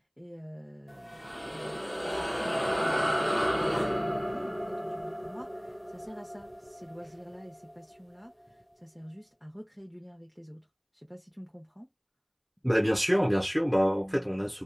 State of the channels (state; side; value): identical; both; correlation 1.00